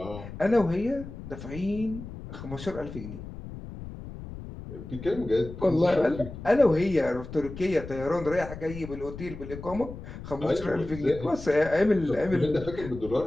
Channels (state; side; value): noise; left; rumble, 12 dB below the sound